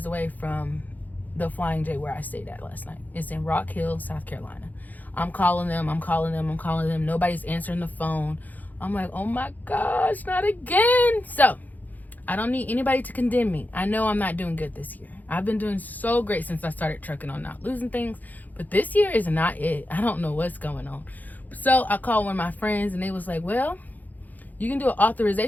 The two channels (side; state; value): right; late; 0.082 ms